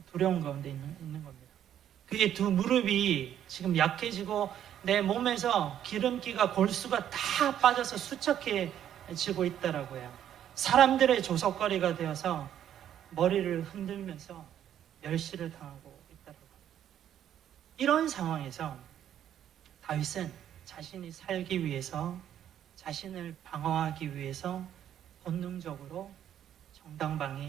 두려운 가운데 있는 겁니다. 그의 두 무릎이 지금 약해지고 내 몸에서 기름기가 골수가 다 빠져서 수척해지고 있다라고 해요. 사람들의 조석거리가 되어서 머리를 흔들면서 멸시를 당하고 있다라고 합니다. 이런 상황에서 다윗은 자신이 살기 위해서, 자신을 방어하기 위해서 본능적으로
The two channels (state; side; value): quieter; left; 10.4 dB